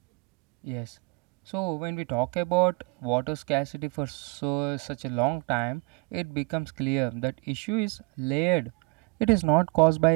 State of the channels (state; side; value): quieter; left; 29.8 dB